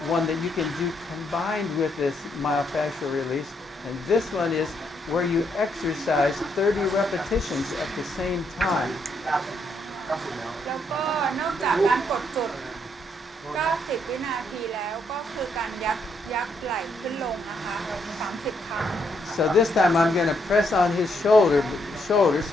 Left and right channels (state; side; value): normal; both; correlation 0.75